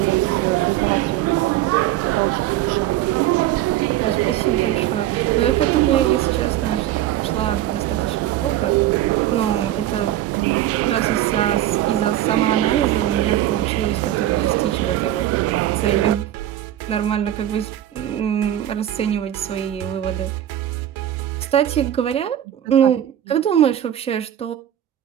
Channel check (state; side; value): quieter; left; 12.6 dB